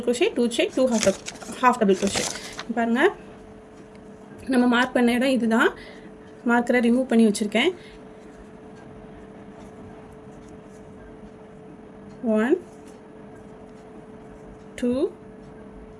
crochet 2 chain 2 half double crochet. பாருங்கள் நம்ம மார்க் பண்ண இடம் இதுதான். மார்க்கரை ரிமூவ் பண்ணி வச்சுருக்கேன். 1 2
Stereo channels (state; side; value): identical; both; correlation 1.00